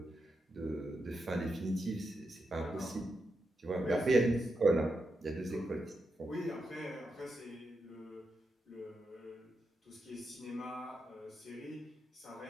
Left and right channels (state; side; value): normal; both; correlation 0.86